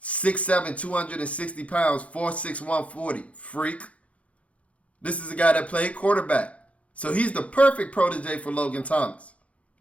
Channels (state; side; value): late; right; 0.064 ms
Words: 6'7", 260 pounds, 4'6", 140. Freak. This is a guy that played quarterback. So he's the perfect protege for Logan Thomas.